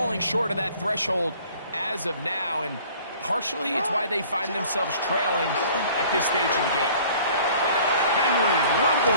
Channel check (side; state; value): both; inverted; correlation -0.51